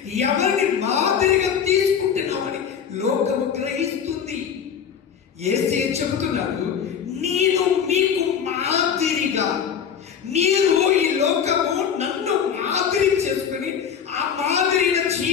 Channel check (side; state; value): right; quieter; 7.7 dB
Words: ఎవరిని మాదిరిగా తీసుకుంటున్నావని లోకము గ్రహిస్తుంది. యేసే చెబుతున్నాడు, నేను మీకు మాదిరిగా, మీరు ఈ లోకము నన్ను మాదిరి చేసుకుని ఆ మాదిరిన